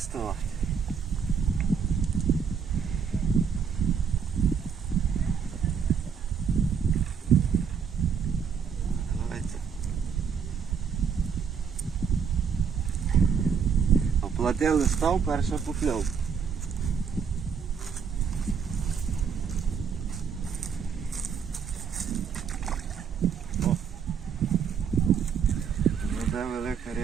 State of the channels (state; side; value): quieter; left; 6.7 dB